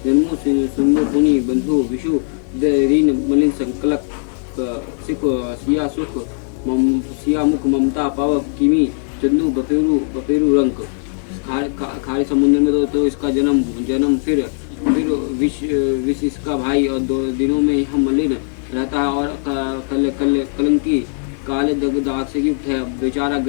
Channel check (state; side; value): silent; right; 61 dB below the other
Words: जन्मो सुंदर पुनि बंधु विषु रीन मलिन संकलक सिख सिया सुख सिया मुख ममता पाव किमी चंदू बपेरू रंक। खारे समुद्र में तो इसका जन्म फिर विष इसका भाई, और 2 दिनों में यह मलिन रहता है और कलंकी काले दाग से युक्त है। बेचारा